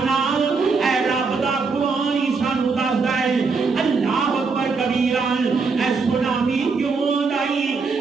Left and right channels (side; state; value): left; quieter; 4.7 dB